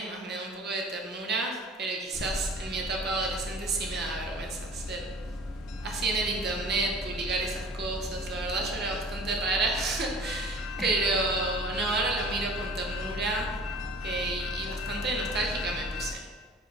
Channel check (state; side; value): normal; both; correlation 0.46